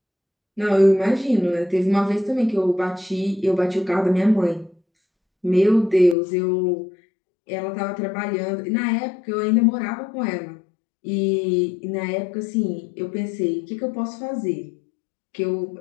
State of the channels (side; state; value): right; drops out; at 6.2 s